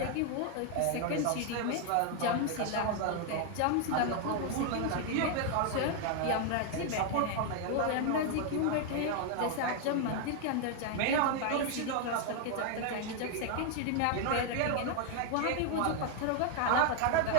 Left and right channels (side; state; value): both; different; correlation 0.00